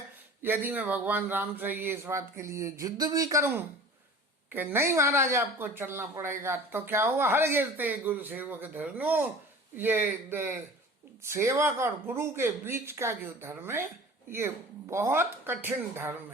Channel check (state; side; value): normal; both; correlation 0.41